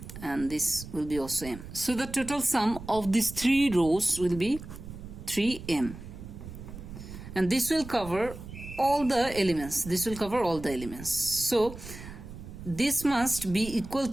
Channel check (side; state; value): right; noise; rumble, 12 dB below the sound